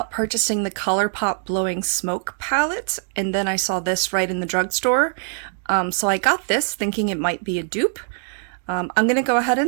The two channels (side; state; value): left; silent; 60 dB below the other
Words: purchasing the ColourPop Blowing Smoke palette, and then I saw this right in the drugstore. So I got this thinking it might be a dupe. I'm going to go ahead